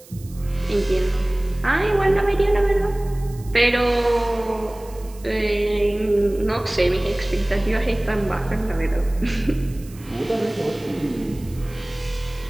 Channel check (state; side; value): noise; right; hiss, 23 dB below the sound